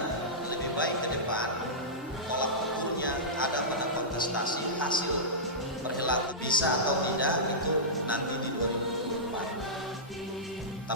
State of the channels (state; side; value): normal; both; correlation -0.15